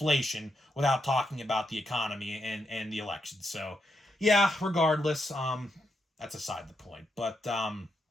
without talking about the economy and the election. So, yeah, regardless, that's aside the point. But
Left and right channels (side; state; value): both; normal; correlation 0.82